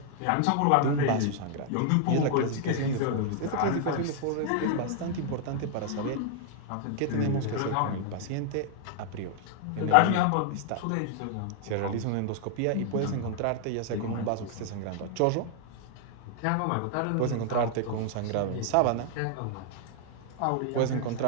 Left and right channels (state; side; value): different; both; correlation 0.00